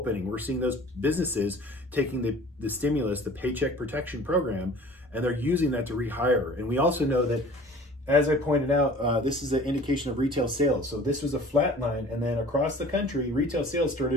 We're seeing those businesses taking the stimulus, the Paycheck Protection Program, and they're using that to rehire. And we also know that, as I pointed out, this is an indication of retail sales. So this was a flat line, and then across the country, retail sales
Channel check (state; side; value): normal; both; correlation 0.46